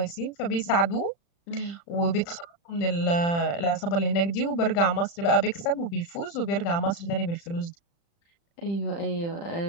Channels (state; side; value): late; right; 35 ms